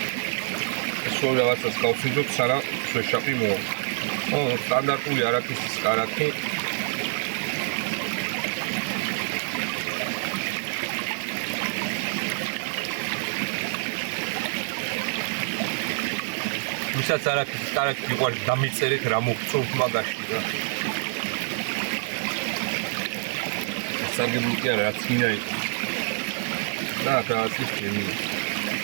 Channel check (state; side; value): silent; left; 60 dB below the other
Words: სულ რაღაცას გავსინჯოთ, სანამ შეშაპი მოვა. სტანდარტული არაქისის კარაქი. ვისაც არაქისის კარაქი მიყვარს, დამიწერეთ რა მოგწონთ მაგაში რა. სარგებლო კი არა, რაც მინდა იყო. და რაღაც ის გემია.